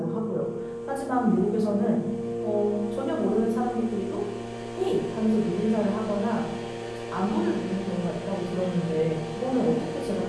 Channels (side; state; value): both; identical; correlation 1.00